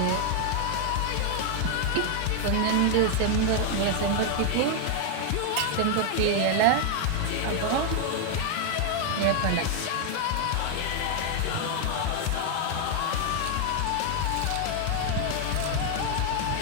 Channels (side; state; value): both; different; correlation 0.00